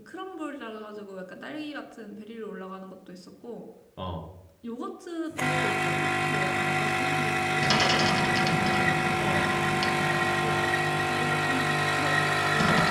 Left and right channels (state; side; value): identical; both; correlation 1.00